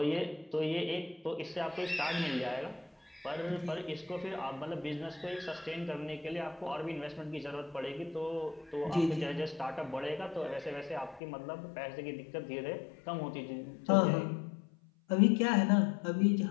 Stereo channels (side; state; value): right; drops out; at 11.2 s